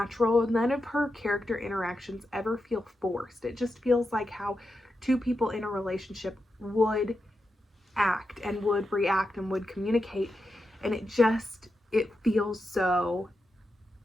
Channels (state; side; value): normal; both; correlation 0.88